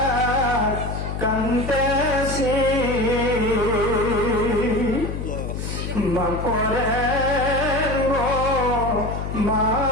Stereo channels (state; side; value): noise; left; hum, 5 dB below the sound